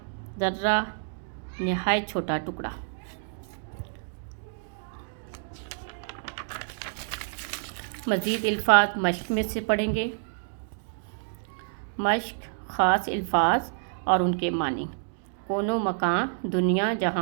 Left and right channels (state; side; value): silent; left; digital silence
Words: ذرہ، نہایت چھوٹا ٹکڑا۔ مزید الفاظ مشق میں سے پڑھیں گے۔ مشق: خاص الفاظ اور ان کے معنی: کون و مکان، دنیا